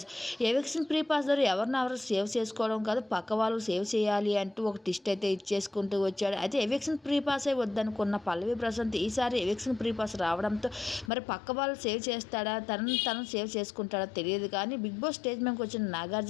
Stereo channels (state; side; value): drops out; right; at 11.1 s